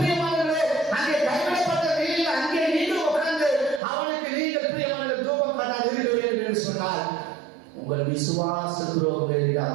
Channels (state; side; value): drops out; left; at 3.8 s